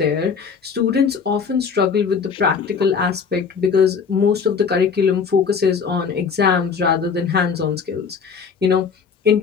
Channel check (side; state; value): right; quieter; 6.0 dB